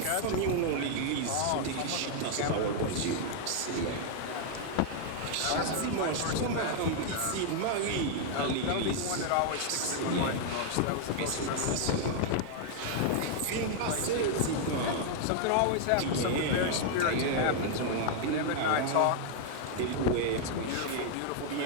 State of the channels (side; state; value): both; different; correlation 0.00